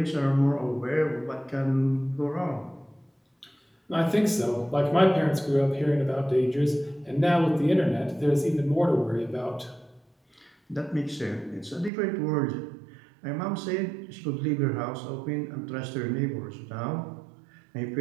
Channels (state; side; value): drops out; left; at 11.9 s